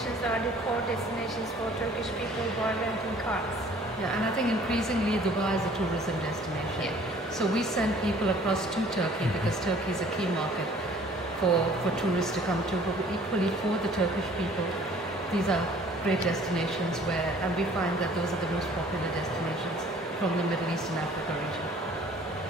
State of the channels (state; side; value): normal; both; correlation 0.54